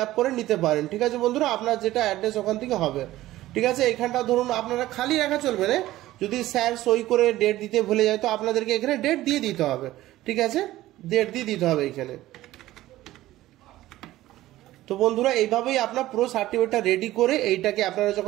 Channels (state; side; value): quieter; left; 15.7 dB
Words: আপ করে নিতে পারেন। ঠিক আছে বন্ধুরা, আপনার যেটা অ্যাড্রেস ওখান থেকে হবে। ঠিক আছে, এখানটা ধরুন আপনারা খালি রাখা চলবে না, যদি স্যার সই করে ডেট দিতে ভুলে যায় তো আপনাদেরকে এখানে ডেট দিয়ে দিতে হবে। ঠিক আছে, ডেট দিয়ে দিতে হবে এখানে। তো বন্ধুরা, এইভাবেই আপনার পুরো সার্টিফিকেটটা রেডি করে এইটাকে আপনারা